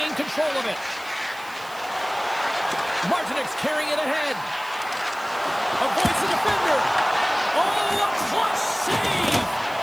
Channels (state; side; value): noise; right; hiss, 20 dB below the sound